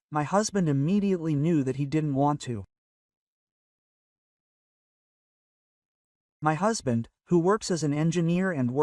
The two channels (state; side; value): identical; both; correlation 1.00